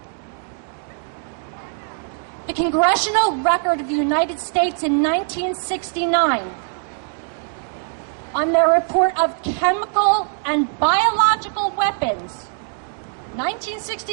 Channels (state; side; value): silent; left; 58 dB below the other